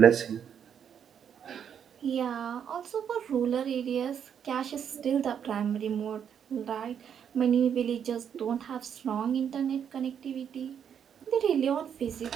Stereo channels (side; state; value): left; quieter; 8.2 dB